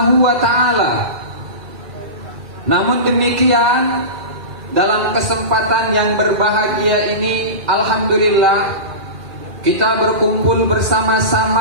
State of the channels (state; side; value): late; left; 2.5 ms